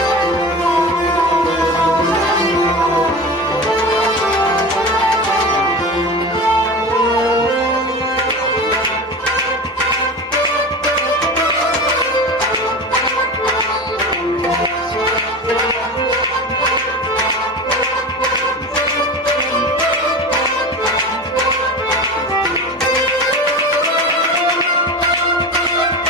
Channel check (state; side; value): normal; both; correlation 0.30